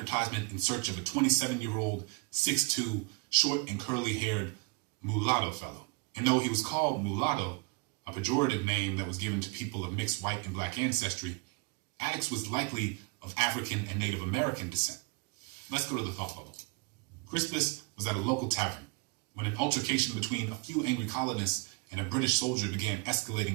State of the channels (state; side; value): quieter; left; 31.0 dB